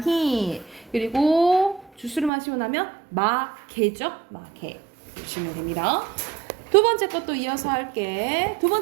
그리고 주스를 마시고 나면 마개죠. 마개. 보시면 됩니다. 두 번째 것도 이어서 할게. 두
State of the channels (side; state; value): left; drops out; at 2.3 s